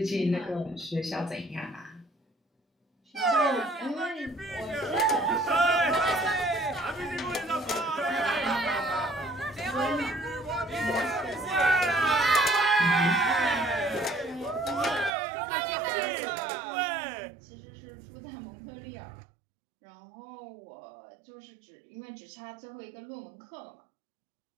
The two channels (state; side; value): drops out; left; at 15.1 s